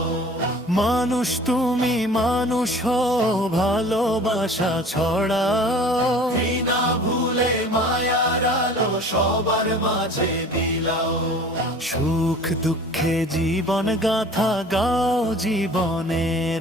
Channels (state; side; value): normal; both; correlation 0.45